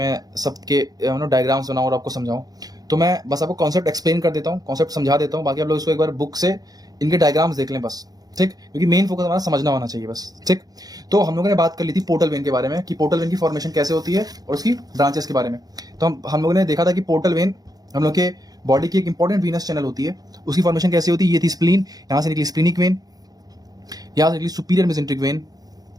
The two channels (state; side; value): late; left; 0.18 ms